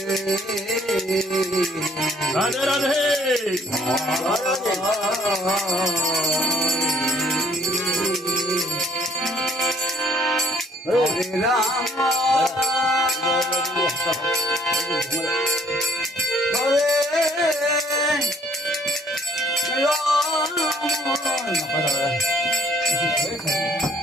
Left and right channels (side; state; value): both; normal; correlation 0.60